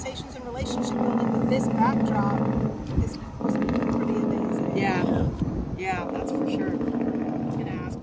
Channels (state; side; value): identical; both; correlation 1.00